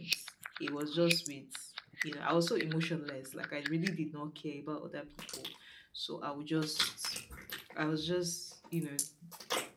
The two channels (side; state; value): both; identical; correlation 1.00